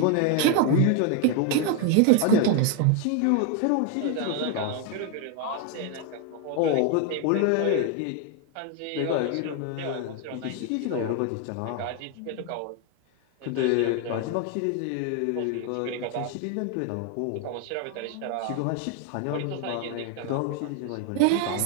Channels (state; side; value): different; both; correlation 0.01